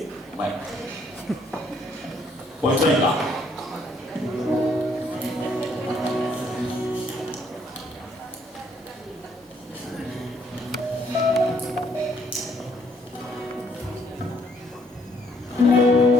Bueno. Pues venga.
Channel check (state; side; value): normal; both; correlation 0.67